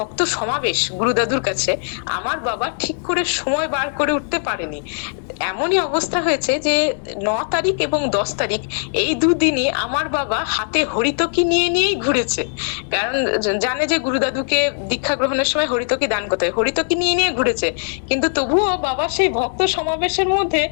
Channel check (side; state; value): right; silent; 66 dB below the other